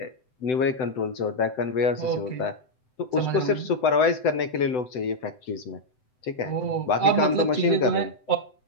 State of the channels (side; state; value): right; late; 7.9 ms